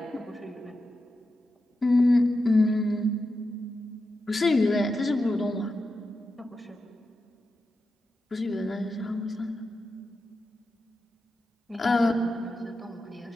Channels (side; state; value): both; normal; correlation 0.89